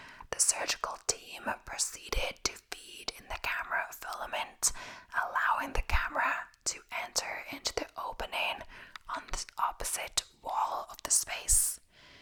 the surgical team proceeded to feed in the camera filament, allowing the camera to enter into the opening on the opposite wall of the space.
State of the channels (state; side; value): identical; both; correlation 1.00